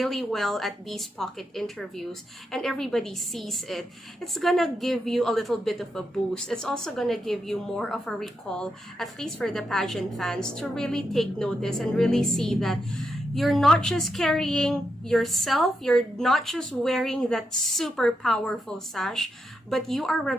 well at these pocket interviews and everybody sees it, it's gonna give you a little bit of a boost. It's also gonna give you more of a recall, at least for the pageant fans, to really take notice and really see that you're not just carrying yourself, you're not just wearing that super powerful sash, but you are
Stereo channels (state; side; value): normal; both; correlation 0.84